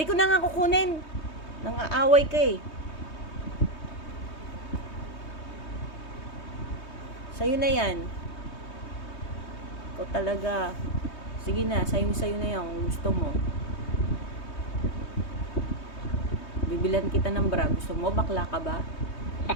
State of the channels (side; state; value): right; late; 3.2 ms